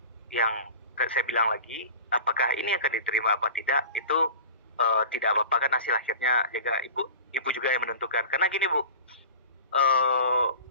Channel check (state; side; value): inverted; both; correlation -0.37